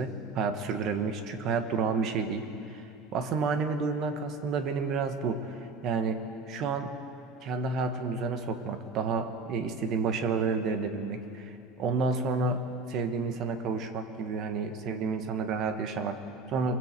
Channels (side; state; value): left; quieter; 4.1 dB